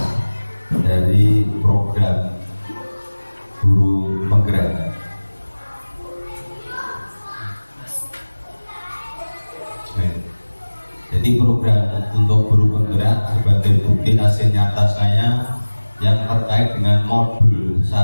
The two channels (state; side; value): inverted; both; correlation -1.00